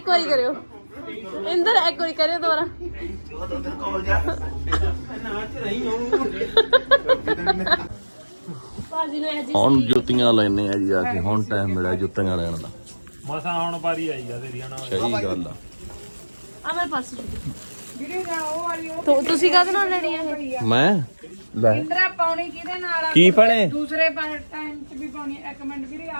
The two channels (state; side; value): inverted; both; correlation -1.00